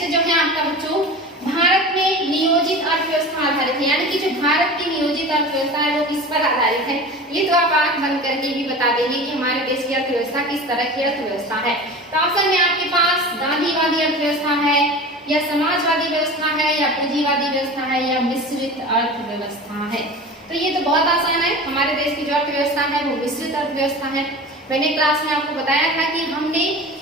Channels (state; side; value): normal; both; correlation 0.34